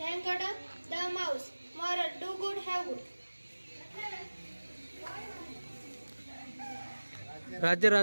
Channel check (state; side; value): inverted; both; correlation -1.00